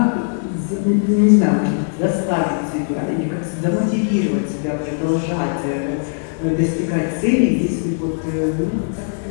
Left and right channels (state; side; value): silent; right; digital silence